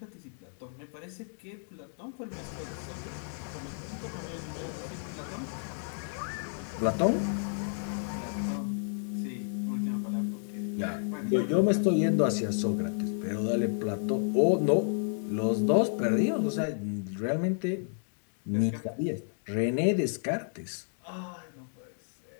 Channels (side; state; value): right; silent; 57 dB below the other